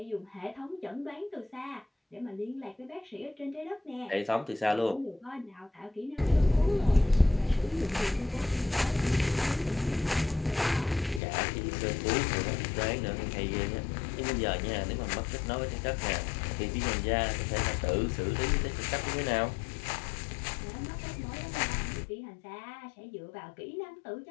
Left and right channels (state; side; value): drops out; right; at 11.2 s